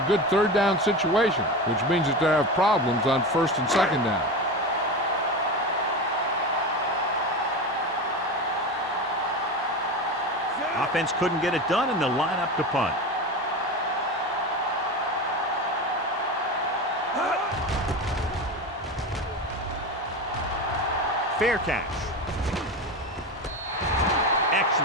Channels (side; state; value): both; normal; correlation 0.24